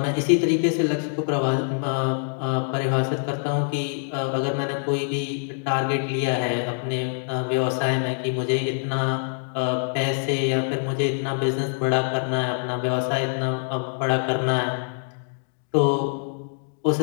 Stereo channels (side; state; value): right; silent; digital silence